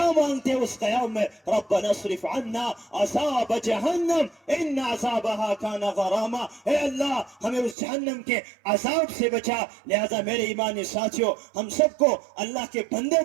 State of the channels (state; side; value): drops out; left; at 7.8 s